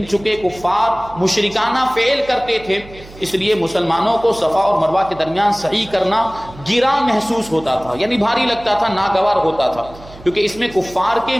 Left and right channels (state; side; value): noise; right; hum, 19 dB below the sound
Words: چونکہ کفار مشرکانہ فعل کرتے تھے اس لیے مسلمانوں کو صفا اور مروہ کے درمیان صحیح کرنا گراں محسوس ہوتا تھا، یعنی بھاری لگتا تھا، ناگوار ہوتا تھا، کیونکہ اس میں کفار کے